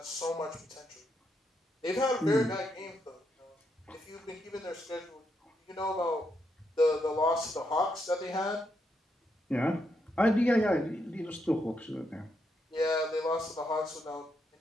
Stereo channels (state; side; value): normal; both; correlation 0.80